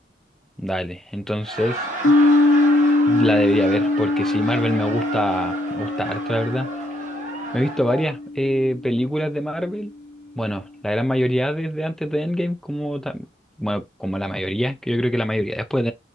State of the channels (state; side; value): normal; both; correlation 0.76